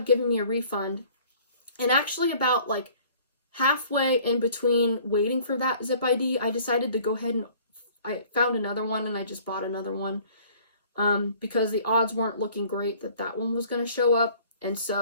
giving me a refund. And actually about like halfway in between waiting for that Zip ID, I decided to go ahead and I found another one, and I just bought another one. Because the odds weren't looking great that that one was going to show up. And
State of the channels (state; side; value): inverted; both; correlation -0.53